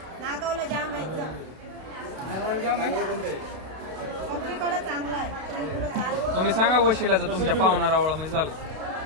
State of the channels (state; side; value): late; left; 32 ms